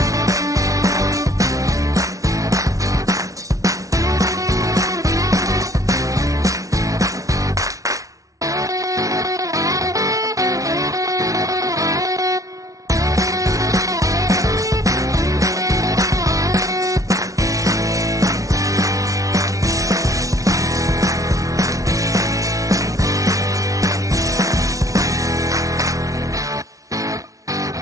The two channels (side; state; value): left; late; 0.17 ms